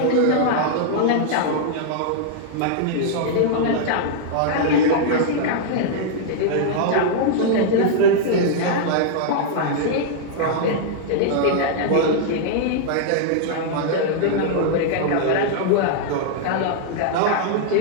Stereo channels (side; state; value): both; different; correlation -0.01